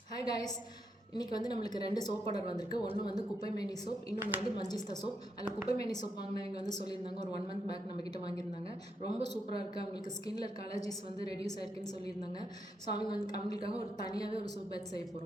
Hi guys, இன்றைக்கி வந்து நம்மளுக்கு 2 சோப் ஆர்டர் வந்திருக்கு. ஒன்று வந்து குப்பைமேனி சோப், இன்னொன்று வந்து மஞ்சிஸ்தா சோப். அதில் குப்பைமேனி சோப் வாங்கினவங்க வந்து சொல்லியிருந்தாங்க, ஒரு 1 மந்த் பேக் நம்மக்கிட்ட வாங்கியிருந்தாங்க. ரொம்ப சூப்பராக இருக்குது, அவங்களுக்கு ஸ்கின்ல இருக்க அலர்ஜிஸ் வந்து ரெடியூஸ் ஆயிருக்குன்னு சொல்லியிருந்தாங்க. ஸோ அவங்களுக்காக ஒரு தனியாகவே ஒரு சோப் பேட்ச் செய்ய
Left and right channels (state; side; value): normal; both; correlation 0.81